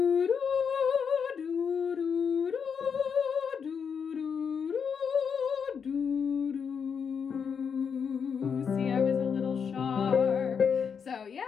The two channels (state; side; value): quieter; right; 6.6 dB